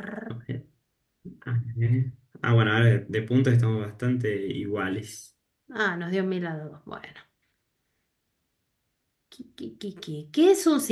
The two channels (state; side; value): identical; both; correlation 1.00